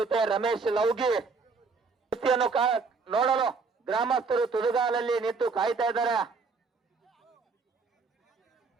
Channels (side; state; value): left; quieter; 4.6 dB